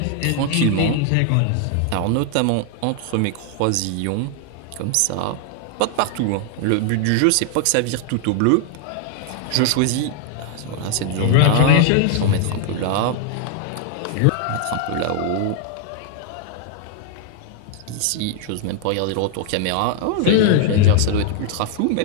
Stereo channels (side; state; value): both; different; correlation 0.00